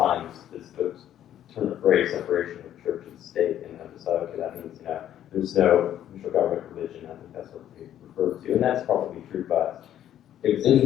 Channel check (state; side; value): quieter; right; 11.2 dB